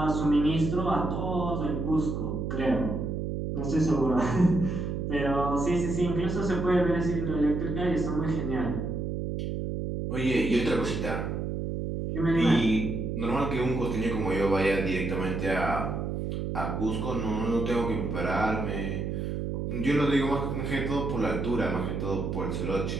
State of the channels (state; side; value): noise; right; hum, 2 dB below the sound